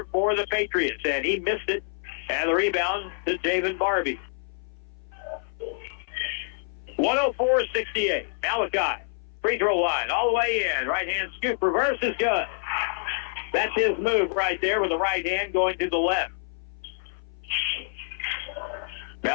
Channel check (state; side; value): silent; right; 58 dB below the other